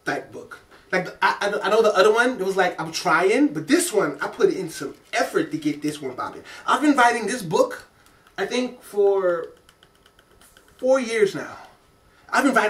type book. Like, I know the other one, it was like, I'm trying, but this one, I put in some effort to get this one popping. I've been writing this book, I think, for 4 years now. I've been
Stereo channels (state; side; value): identical; both; correlation 1.00